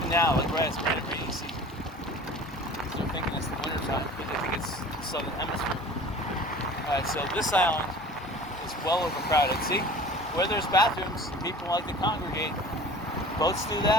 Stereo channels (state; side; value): normal; both; correlation 0.42